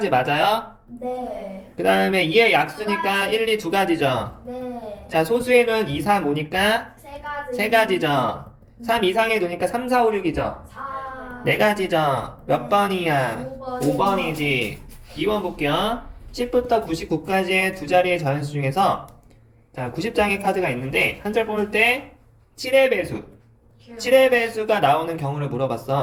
맞아요. 네. 그 다음에 2의 약수니까 1, 2 두 가지죠. 네. 자, 소수의 눈 2, 3, 5니까 세 가지. 세 가지죠. 3 이상의 눈이니까 3, 4, 5, 6이죠. 4. 네 가지죠. 몇 번이야? 5번. 5번이지. 2번 볼게요. 10부터 99까지의 두 자리의 자연수 중에서 자, 90장의 카드가 있는데 한 절 뽑을 때 7의 배수. 7의 배수가 나오는 경우를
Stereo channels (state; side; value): identical; both; correlation 1.00